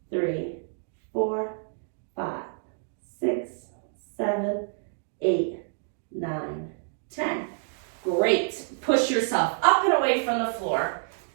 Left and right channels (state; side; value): silent; left; digital silence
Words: 3, 4, 5, 6, 7, 8, 9, 10. Great. Push yourself up and away from the floor.